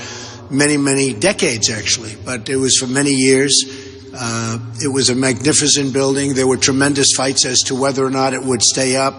many, many decades, actually, but it was for many years. It was a magnificent building. There were tremendous fights as to whether or not it would stay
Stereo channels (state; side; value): identical; both; correlation 1.00